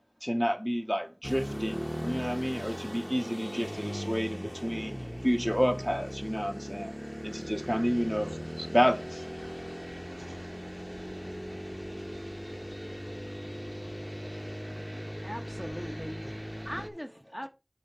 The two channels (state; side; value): identical; both; correlation 1.00